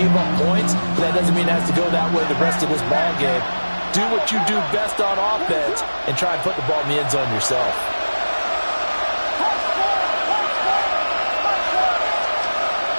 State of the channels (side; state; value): both; inverted; correlation -1.00